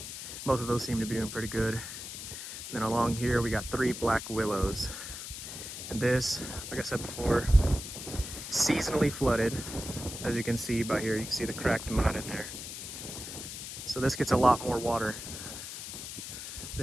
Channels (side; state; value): left; noise; hiss, 9 dB below the sound